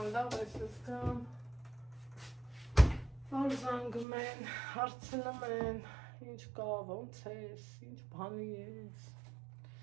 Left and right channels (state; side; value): drops out; left; at 4.0 s